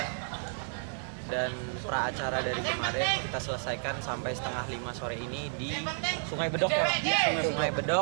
dan pra acara dari kemarin kita selesaikan sampai setengah 5 sore ini di Sungai Bedok ya, Sungai Bedok,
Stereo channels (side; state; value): left; silent; 57 dB below the other